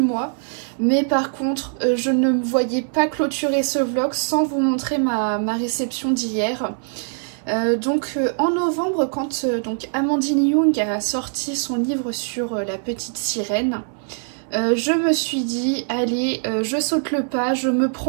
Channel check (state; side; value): silent; left; 64 dB below the other